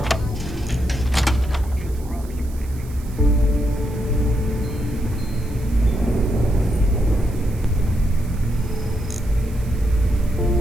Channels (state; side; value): noise; right; hiss, 22 dB below the sound